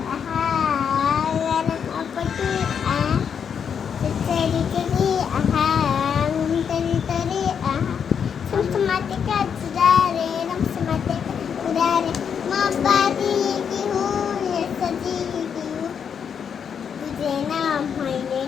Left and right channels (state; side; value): quieter; right; 7.3 dB